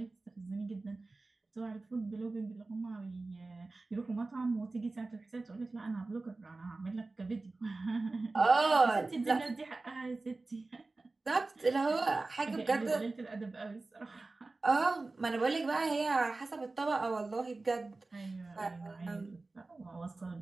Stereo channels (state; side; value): quieter; left; 3.4 dB